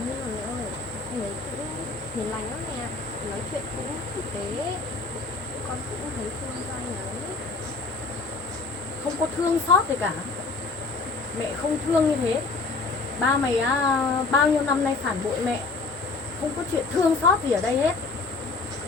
mà mẹ ơi, anh ấy cũng hiền lành lắm nè, nói chuyện cũng tử tế, con cũng thấy thương cho anh ấy. Không có thương xót gì cả. Mẹ không thương như thế. Ba mày bao nhiêu năm nay phản bội mẹ, không có chuyện thương xót gì ở đây hết.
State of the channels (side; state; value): right; quieter; 3.9 dB